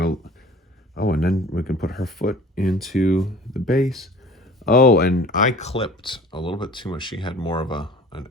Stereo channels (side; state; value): both; normal; correlation 0.46